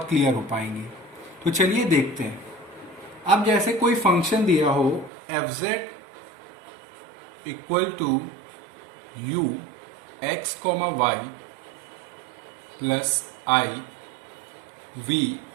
क्लियर हो पाएंगी। तो चलिए देखते हैं। अब जैसे कोई फंक्शन दिया हो F Z equal to U X comma Y plus I V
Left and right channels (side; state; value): left; drops out; at 5.1 s